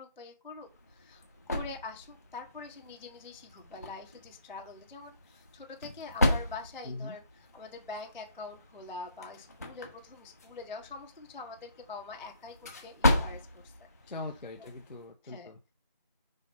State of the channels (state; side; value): inverted; both; correlation -0.67